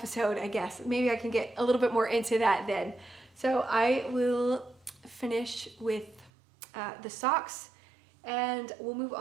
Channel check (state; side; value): drops out; left; at 6.3 s